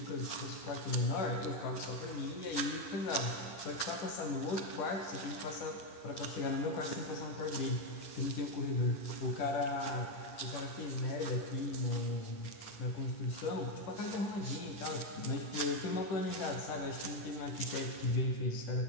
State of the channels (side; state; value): right; late; 9.7 ms